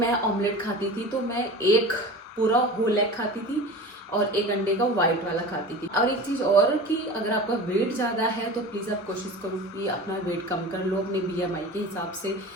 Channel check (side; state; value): both; normal; correlation 0.34